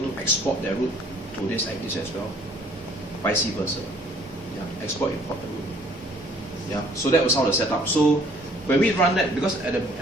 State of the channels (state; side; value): normal; both; correlation 0.58